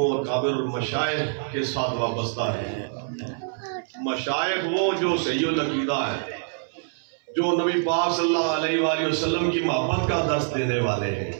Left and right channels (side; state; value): left; silent; 62 dB below the other